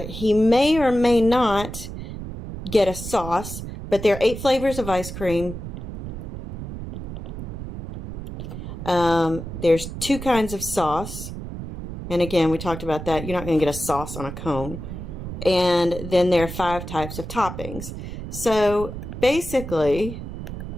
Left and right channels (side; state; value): right; noise; rumble, 8 dB below the sound